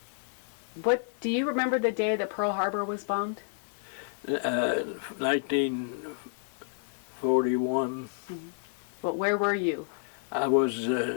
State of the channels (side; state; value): right; silent; 56 dB below the other